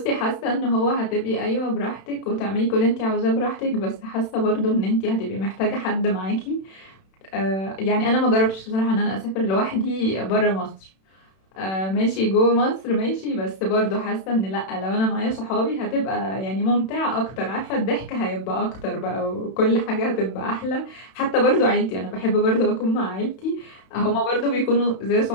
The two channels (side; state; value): right; late; 31 ms